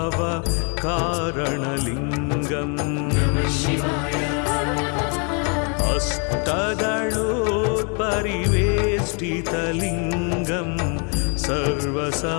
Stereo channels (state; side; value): quieter; right; 37.0 dB